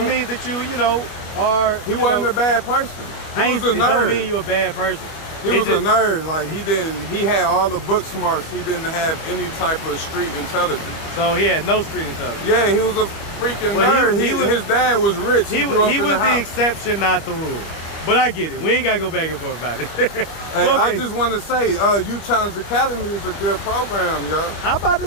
means that you are. He wasn't a bad person. He was a nerd. It don't mean you're a bad person. He was a nerd. Like he had all the book smarts. He didn't have any type of street intelligence. So he had no street intelligence. Yeah, he was a freaking nerd. His dad was rich. He grew up in was the house. exception, not the rule. But I get it. We ain't gotta go back and forth about it. Hey, I just want to say, Youth Challenge Academy is a good program, yo. I'm about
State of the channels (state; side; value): late; right; 25 ms